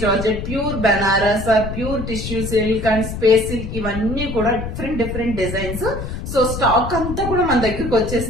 georgette, pure Banaras, pure tissue silk and space silk, ఇవన్నీ కూడా డిఫరెంట్ డిజైన్స్. సో స్టాక్ అంతా కూడా మన దగ్గరకు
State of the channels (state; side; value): noise; left; rumble, 6 dB below the sound